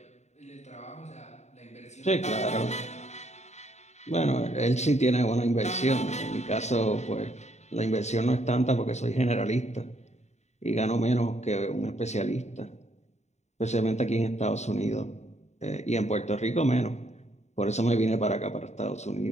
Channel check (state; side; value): late; right; 0.33 ms